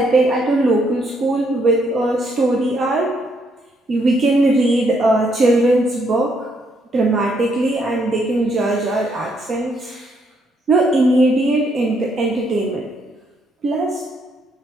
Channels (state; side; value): normal; both; correlation 0.73